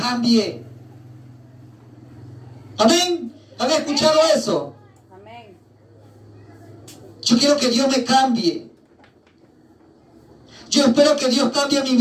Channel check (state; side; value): identical; both; correlation 1.00